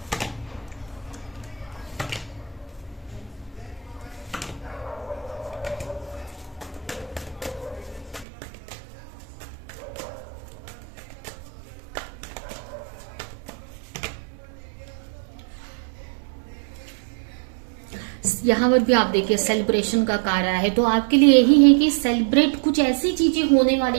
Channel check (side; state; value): left; drops out; at 8.2 s